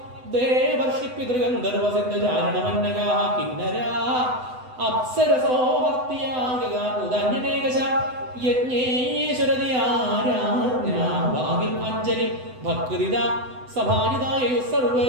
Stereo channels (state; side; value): late; left; 8.0 ms